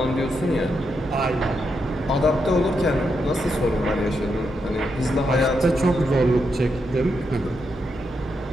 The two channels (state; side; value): normal; both; correlation 0.83